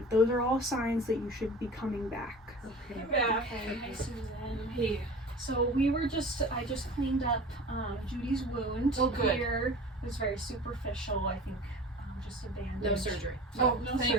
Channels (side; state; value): both; normal; correlation 0.39